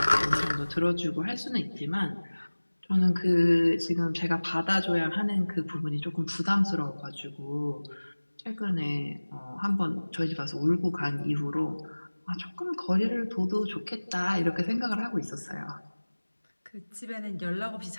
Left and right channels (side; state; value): both; inverted; correlation -1.00